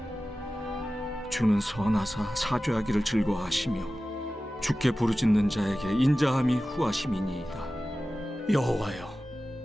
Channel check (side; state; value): both; normal; correlation 0.95